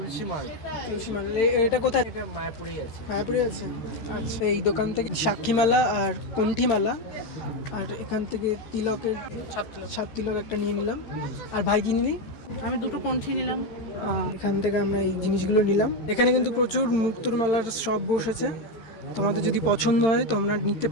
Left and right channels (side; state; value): right; late; 13 ms